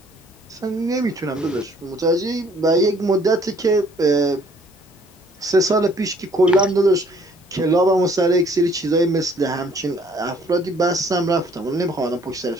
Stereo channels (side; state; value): both; normal; correlation 0.60